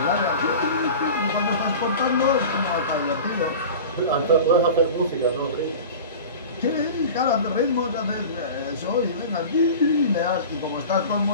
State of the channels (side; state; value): both; inverted; correlation -0.35